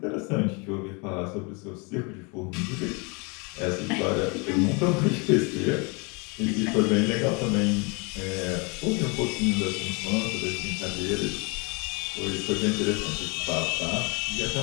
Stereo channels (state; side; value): quieter; right; 30.6 dB